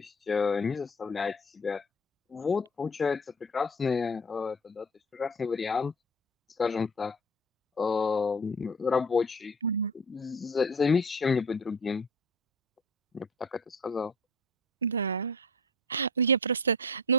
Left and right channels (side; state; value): both; normal; correlation 0.38